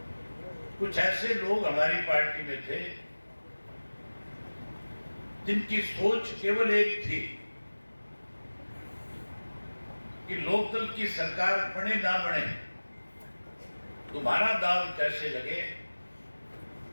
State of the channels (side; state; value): both; inverted; correlation -1.00